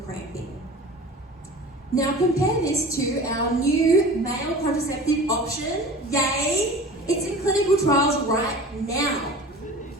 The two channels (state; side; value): normal; both; correlation 0.39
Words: cramping. Now compare this to our new male contraceptive option, yay! It's in clinical trials right now.